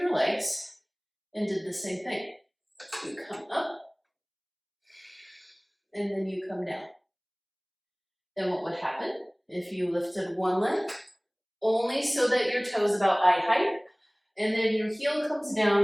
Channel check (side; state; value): both; identical; correlation 1.00